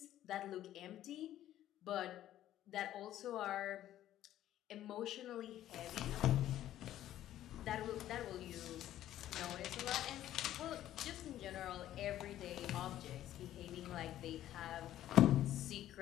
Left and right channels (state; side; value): quieter; right; 12.7 dB